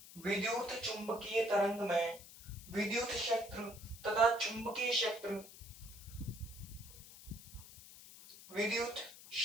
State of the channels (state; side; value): noise; left; hiss, 17 dB below the sound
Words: विद्युत चुंबकीय तरंग में विद्युत क्षेत्र तथा चुंबकीय क्षेत्र, विद्युत